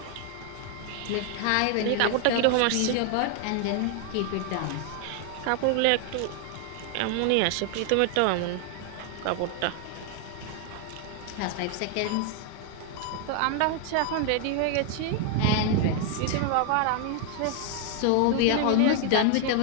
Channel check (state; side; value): different; both; correlation 0.00